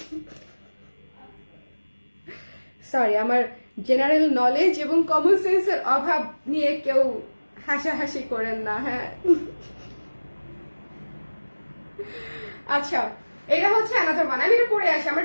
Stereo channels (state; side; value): inverted; both; correlation -1.00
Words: সরি, আমার জেনারেল নলেজ এবং কমন সেন্সের অভাব নিয়ে কেউ হাসাহাসি করেন না, হ্যাঁ। আচ্ছা এটা হচ্ছে অ্যানাদার ওয়ান, আমি এটা পরে আসি,